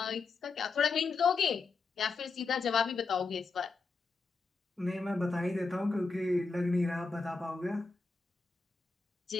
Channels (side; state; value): right; quieter; 4.3 dB